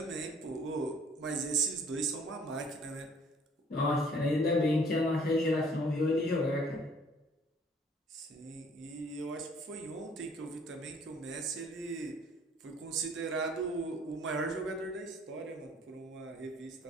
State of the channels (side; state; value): both; normal; correlation 0.57